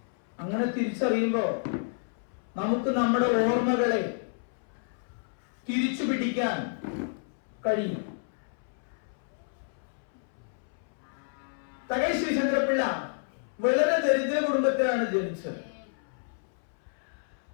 അങ്ങനെ തിരിച്ചറിയുമ്പോൾ നമുക്ക് നമ്മുടെ ഓർമ്മകളെ തിരിച്ചു പിടിക്കാൻ കഴിയും. തകഴി ശിവശങ്കരപിള്ള വളരെ ദരിദ്ര കുടുംബത്തിലാണ് ജനിച്ചത്.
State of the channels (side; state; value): right; silent; 58 dB below the other